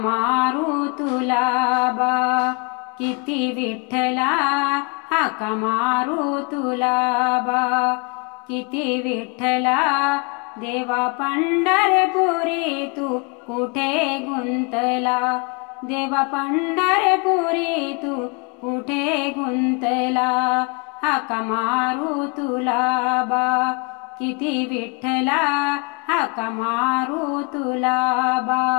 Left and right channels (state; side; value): quieter; right; 32.6 dB